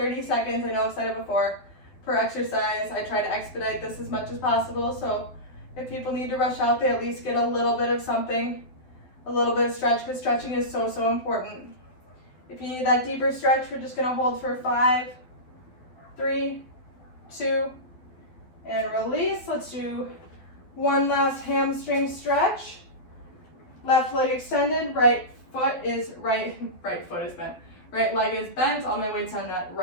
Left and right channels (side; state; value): right; late; 12 ms